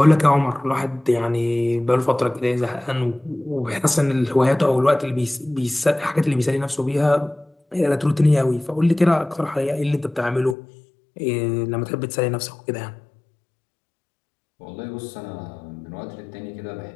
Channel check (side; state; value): right; drops out; at 10.6 s